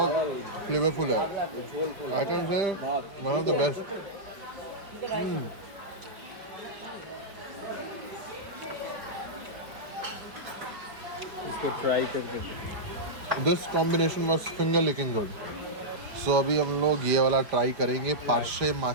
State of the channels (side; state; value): left; late; 5.0 ms